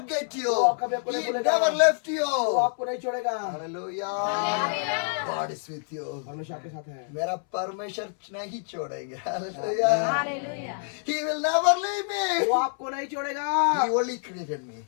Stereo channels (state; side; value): silent; right; 60 dB below the other